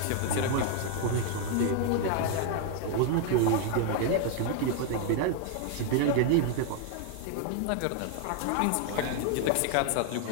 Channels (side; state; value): both; different; correlation 0.00